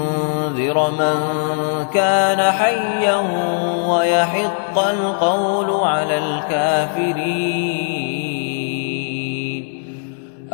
من كان حيا ويحق القول على الكافرين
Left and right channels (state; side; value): silent; right; 66 dB below the other